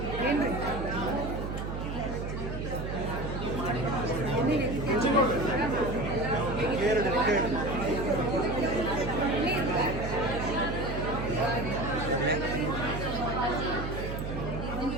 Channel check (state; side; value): noise; right; hum, 5 dB below the sound